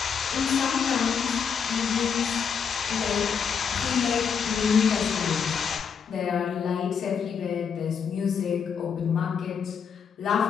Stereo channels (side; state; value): right; quieter; 6.8 dB